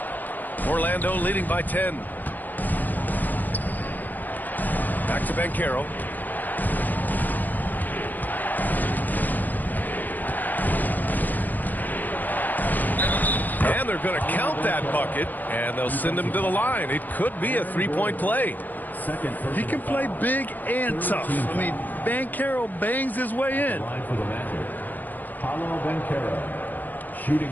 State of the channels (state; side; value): late; right; 0.085 ms